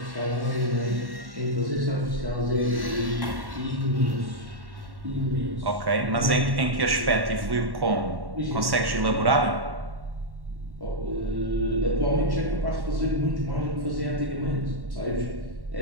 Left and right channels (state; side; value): late; left; 1.1 ms